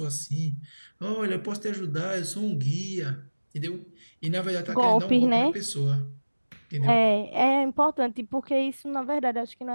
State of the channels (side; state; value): both; inverted; correlation -1.00